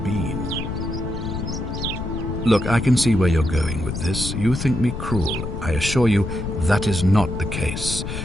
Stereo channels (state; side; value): noise; left; rumble, 5 dB below the sound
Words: been. Look, I can see where you're going with this. You think me cruel. I assure you that is not the case.